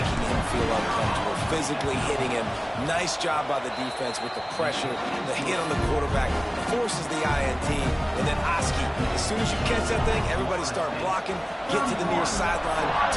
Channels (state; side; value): identical; both; correlation 1.00